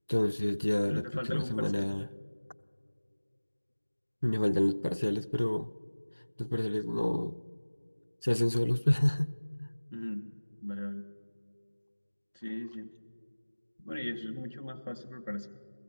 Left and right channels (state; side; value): inverted; both; correlation -1.00